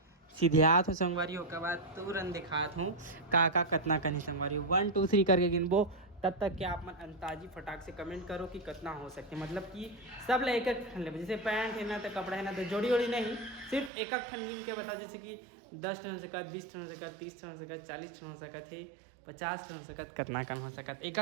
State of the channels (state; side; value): drops out; left; at 13.9 s